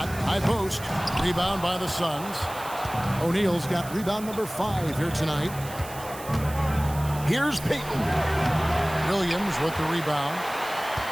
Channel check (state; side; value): noise; right; hiss, 15 dB below the sound